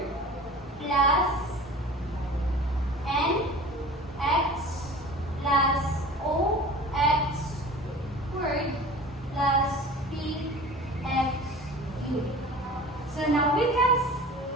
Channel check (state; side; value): normal; both; correlation 0.40